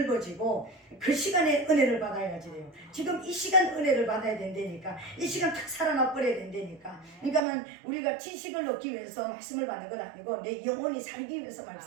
그 시간에 은혜를 받아야지 돼요. 지금 이 시간 은혜를 받아야 된다니까. 이 시간 탁 살아나 버려야 된다니까. 그러니까는 우리가 지식을 얻기 위해서 말씀을 받는 건 아니고 내 영혼이 살기 위해서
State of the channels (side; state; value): left; drops out; at 7.4 s